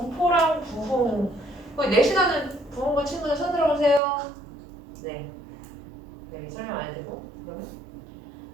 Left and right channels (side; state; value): left; drops out; at 4.0 s